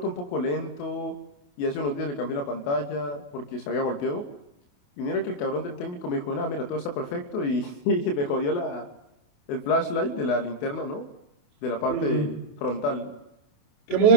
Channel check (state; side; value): late; right; 28 ms